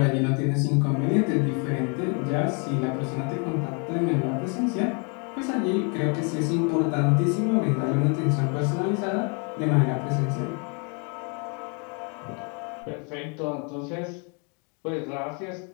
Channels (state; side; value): quieter; right; 36.1 dB